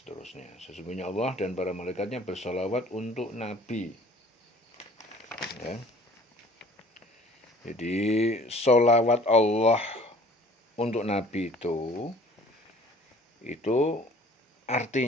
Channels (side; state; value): both; normal; correlation 0.51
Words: Sesungguhnya Allah dan para malaikatnya bersolawat untuk Nabi. Ya. Jadi solawat Allah untuk Nabi itu itu